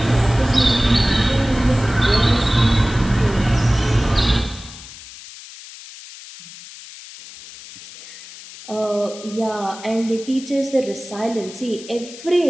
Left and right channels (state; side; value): noise; left; hiss, 16 dB below the sound